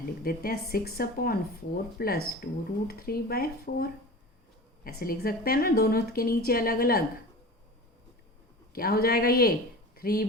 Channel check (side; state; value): both; normal; correlation 0.34